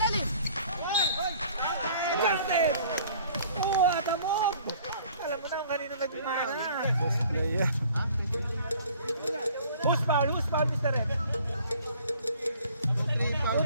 Garnet. What a move. Alam mo na kung kanino nagmana. Player. Who's foul, Mr. Red?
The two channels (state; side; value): inverted; both; correlation -0.54